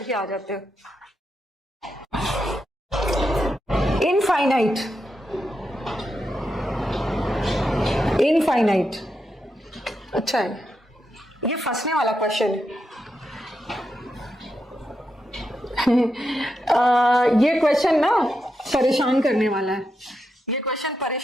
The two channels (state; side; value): normal; both; correlation 0.85